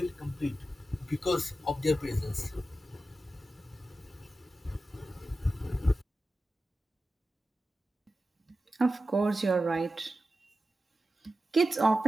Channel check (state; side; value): normal; both; correlation 0.93